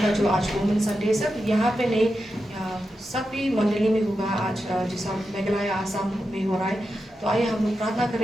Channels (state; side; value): normal; both; correlation 0.89